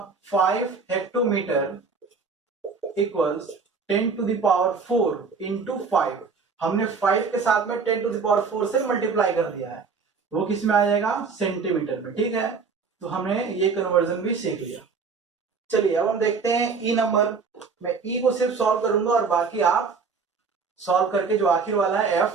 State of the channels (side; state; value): left; quieter; 5.1 dB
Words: 5 hectometre equals 10 to the power 4 into 5। हमने 5 के साथ में 10 टू द पावर 4 से मल्टीप्लाई कर दिया है, वो किस में आ जाएगा, सेंटीमीटर में, ठीक है। तो हमने ये कन्वर्जन भी सीख लिया। चलिए अब हम देखते हैं ई नंबर। मैं ई को सिर्फ सॉल्व करूंगा और बाकी आप सॉल्व करके जो आखिर वाला है